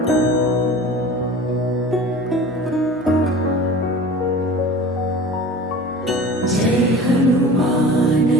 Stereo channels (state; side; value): normal; both; correlation 0.39